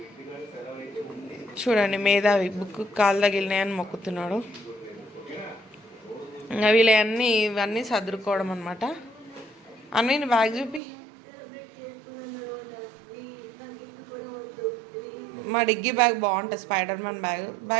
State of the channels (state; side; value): drops out; left; at 10.8 s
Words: చూడండి, మేధావి బుక్ కాలు తగిలినాయని మొక్కుతున్నాడు. ఇంకా ఇవన్నీ సర్దుకోవడం అనమాట. అన్నీ బ్యాగ్ చూపి. మా డిగ్గీ బ్యాగ్ బాగుంటుంది, స్పైడర్ మ్యాన్